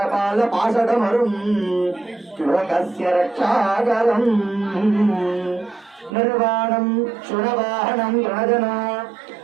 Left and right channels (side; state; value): left; drops out; at 6.2 s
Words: पाशकमरुम् लोकस्य रक्षाकरम् निर्वाणं शुनवाहनं गणजन